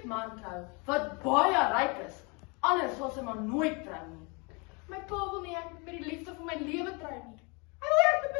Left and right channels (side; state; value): right; quieter; 30.9 dB